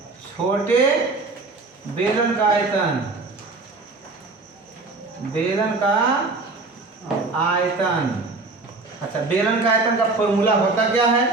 छोटे बेलन का आयतन, बेलन का आयतन। अच्छा, बेलन का आयतन का फॉर्मूला होता क्या है?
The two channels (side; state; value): left; quieter; 3.6 dB